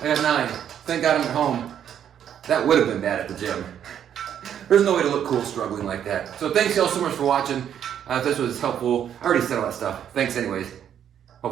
I got 9. Thank God I'm at home. That would have been bad at the gym. There's no way to look cool struggling like that. So thanks y'all so much for watching. If this was helpful, I already said all that stuff. Thanks anyways.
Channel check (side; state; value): left; quieter; 9.4 dB